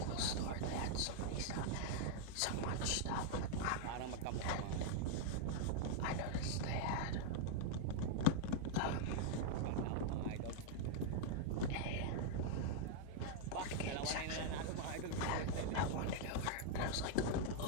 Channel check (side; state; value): both; different; correlation 0.00